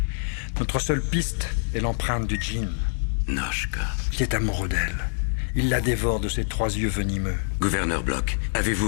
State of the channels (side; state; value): right; silent; digital silence